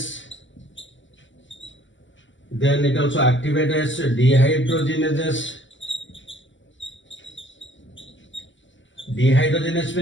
Then it also activates dehydrogenases. Dehydrogenase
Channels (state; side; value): late; right; 0.55 ms